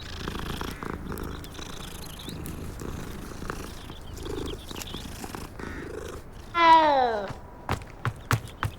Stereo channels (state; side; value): identical; both; correlation 1.00